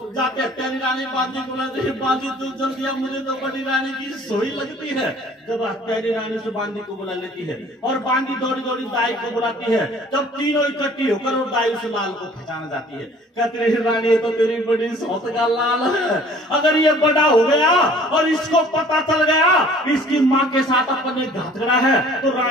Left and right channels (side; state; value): both; normal; correlation 0.52